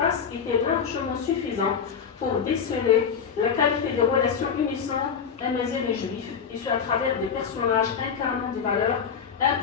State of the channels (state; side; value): quieter; right; 6.8 dB